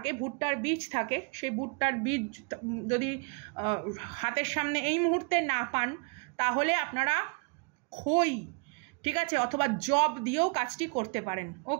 ভুট্টার বীজ থাকে, সেই ভুট্টার বীজ যদি হাতের সামনে এই মুহূর্তে না পান, তাহলে আপনারা খই, ঠিক আছে, অথবা জব দিয়েও কাজটি করতে পারেন।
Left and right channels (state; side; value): quieter; left; 33.7 dB